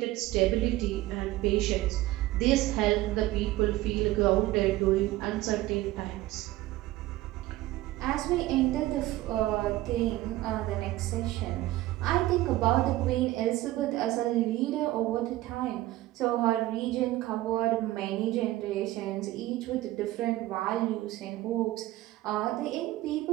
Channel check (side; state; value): left; quieter; 16.7 dB